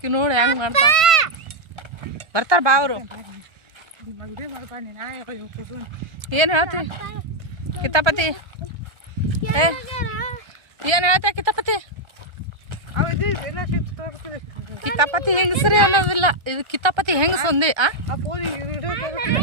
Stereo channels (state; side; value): late; left; 1.4 ms